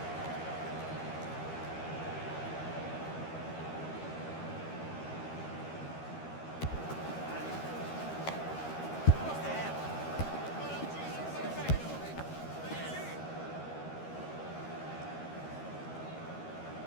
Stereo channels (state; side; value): late; right; 13 ms